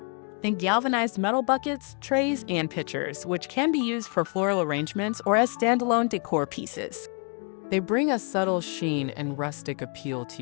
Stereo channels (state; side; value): quieter; right; 38.1 dB